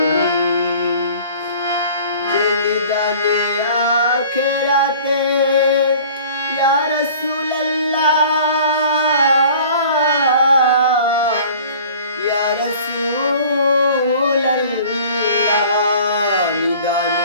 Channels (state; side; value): inverted; both; correlation -0.47